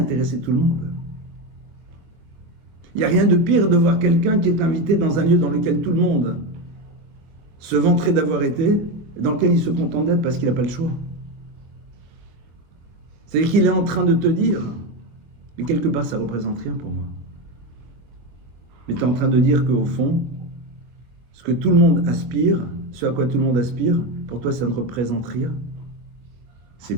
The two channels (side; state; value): left; late; 23 ms